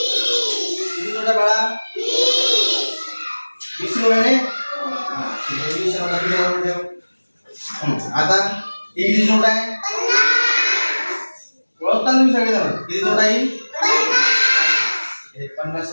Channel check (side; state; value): both; inverted; correlation -1.00